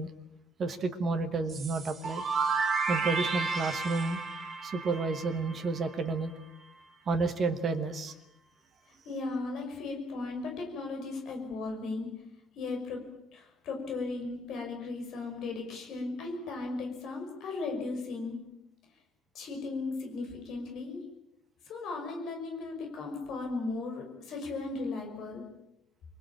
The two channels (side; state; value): both; normal; correlation 0.68